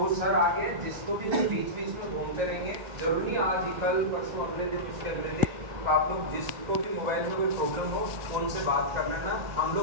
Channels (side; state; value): left; late; 1.6 ms